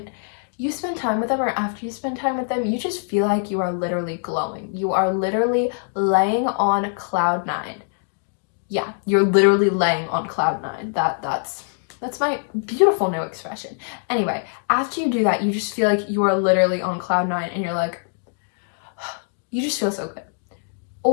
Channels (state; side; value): silent; right; digital silence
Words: you spend time with them or after you spend time with them, you just feel like you are literally glowing. You are literally laying on cloud 9. Yeah, you're literally laying on cloud 9. That's my beautiful new expression. Anyway, after you do that, you just feel like you are literally on cloud 9 and you're like, you just feel so good.